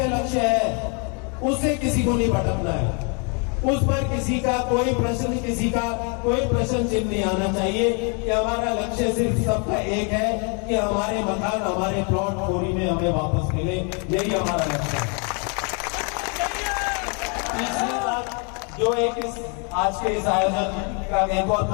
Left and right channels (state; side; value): quieter; right; 36.6 dB